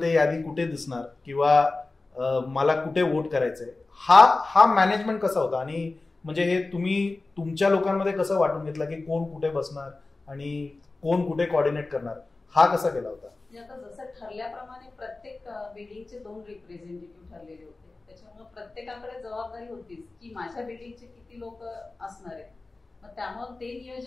ते यादी कुठे दिसणार किंवा मला कुठे वोट करायचंय, हा मॅनेजमेंट कसा होता? आणि म्हणजे हे तुम्ही तुमच्या लोकांमध्ये कसं वाटून घेतलं की कोण कुठे बसणार आणि कोण कुठे कोऑर्डिनेट करणार, हा कसा केला होता? म्हणजे आता जसं ठरल्याप्रमाणे प्रत्येक बिल्डिंगचे 2 रिप्रेझेंटेटिव्ह ठरलेले होते. त्याच्यामुळे प्रत्येकाकडे जबाबदारी होतीच की माझ्या बिल्डिंगचे किती लोक असणार आहेत. मग त्यामुळे ते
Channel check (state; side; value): quieter; right; 3.4 dB